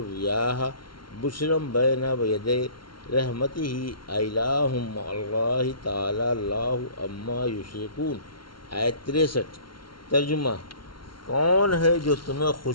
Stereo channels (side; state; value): right; late; 0.73 ms